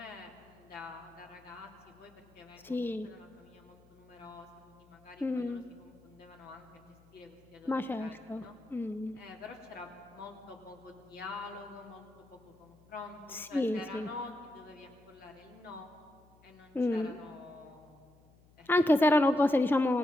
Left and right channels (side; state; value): left; noise; hum, 28 dB below the sound